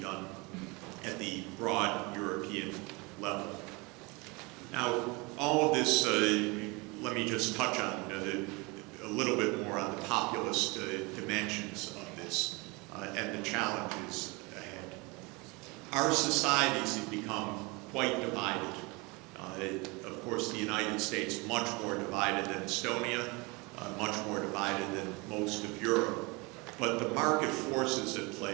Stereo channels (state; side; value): quieter; left; 26.8 dB